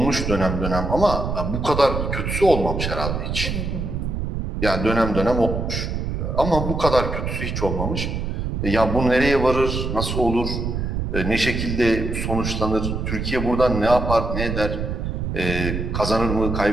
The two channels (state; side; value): noise; right; rumble, 3 dB below the sound